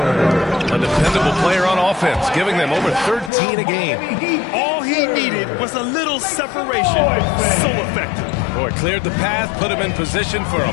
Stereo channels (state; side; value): drops out; right; at 3.3 s